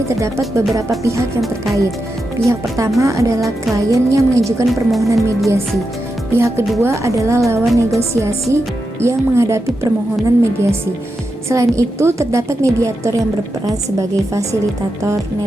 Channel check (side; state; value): both; normal; correlation 0.88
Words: terdapat beberapa pihak yang terkait. Pihak pertama adalah klien yang mengajukan permohonan mediasi. Pihak kedua adalah lawan negosiasi yang menghadapi permohonan mediasi. Selain itu, terdapat mediator yang berperan sebagai fasilitator